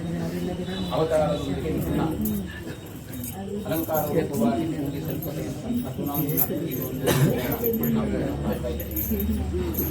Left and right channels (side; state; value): both; identical; correlation 1.00